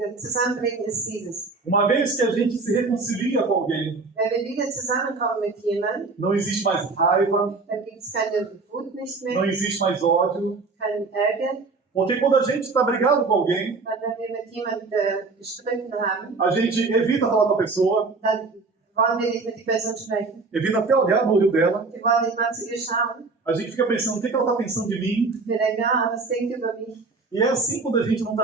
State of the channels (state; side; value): quieter; left; 4.0 dB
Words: Zusammenbringen ist dieses? Uma vez que a gente se reconcilia com alguém, Wenn wir wieder zusammenkommen mit jemandem, não existe mais raiva, dann gibt es keine Wut nicht não mehr, existe mais ódio. keinen Ärger. Porque quando a gente está brigado com alguém, Weil wenn wir mit jemandem gestritten haben, a gente evita falar com a pessoa, dann wollen wir nicht mit der Person sprechen. evita até olhar no olho dela. Wir wollen nicht mal zu ihr schauen. A gente fica pensando, o que ela está pensando de mim? Wir denken, was denkt über mich? E é assim quando a gente não